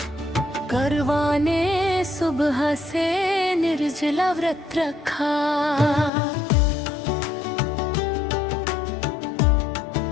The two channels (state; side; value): drops out; right; at 6.1 s